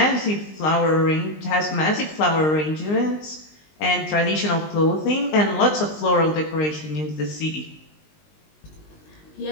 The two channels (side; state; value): right; late; 19 ms